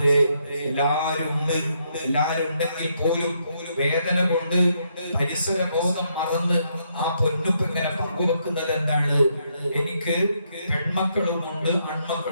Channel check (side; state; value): both; inverted; correlation -0.76